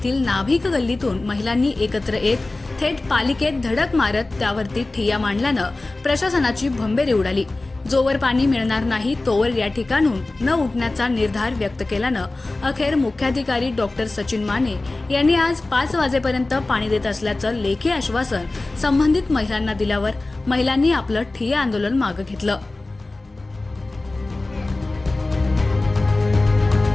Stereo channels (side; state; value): right; quieter; 3.0 dB